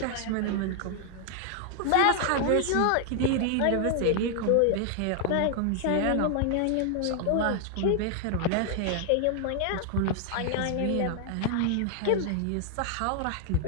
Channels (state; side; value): different; both; correlation 0.00